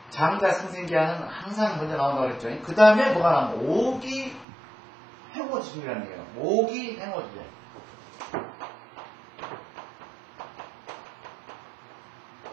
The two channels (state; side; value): drops out; left; at 4.5 s